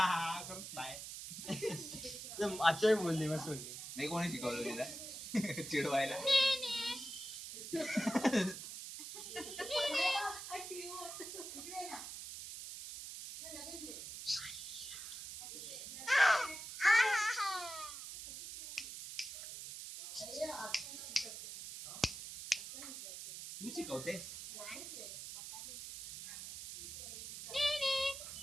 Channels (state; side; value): noise; right; hiss, 9 dB below the sound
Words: बोलली मस्त बोलली. नाही कोणी शिकवलं तिला चिडवायला? तू शिकवतेस?